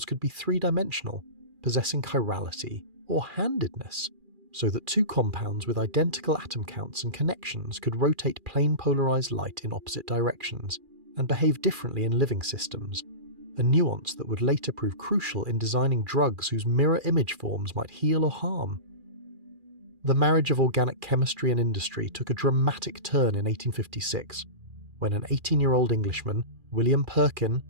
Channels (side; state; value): left; late; 2.4 ms